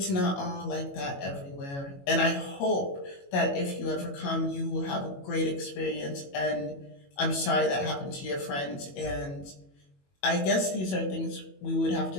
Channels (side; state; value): right; late; 21 ms